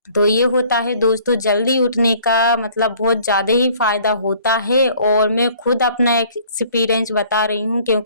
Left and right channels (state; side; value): inverted; both; correlation -0.56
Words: तो ये होता है दोस्तों जल्दी उठने का मतलब बहुत ज़्यादा ही फ़ायदा होता है और मैं खुद अपना एक्सपीरियंस बता रही हूँ,